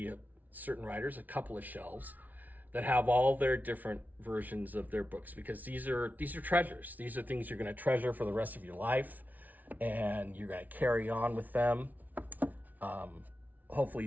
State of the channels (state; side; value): late; left; 0.077 ms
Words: certain writers, a couple of shelves that have all their different versions of their books, because these are treasures. These are things you're going to treasure for the rest of your life, and you're going to carry on with them,